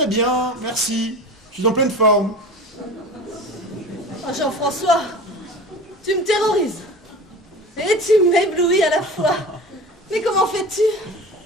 bien, merci, je suis en pleine forme. Oh, Jean-François, tu me terrorises. Et tu m'éblouis à la fois. Mais comment fais-tu?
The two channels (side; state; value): both; normal; correlation 0.35